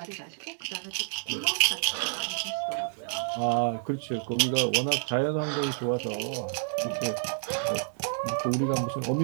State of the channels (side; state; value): left; silent; digital silence